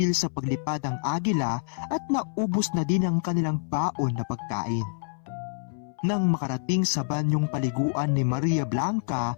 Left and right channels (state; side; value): silent; right; 60 dB below the other